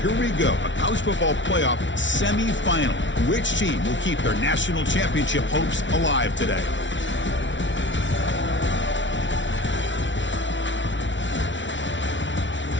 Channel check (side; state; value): right; late; 0.55 ms